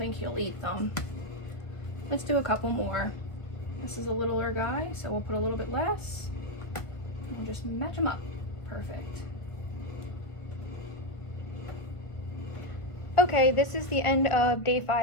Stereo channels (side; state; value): right; late; 1.5 ms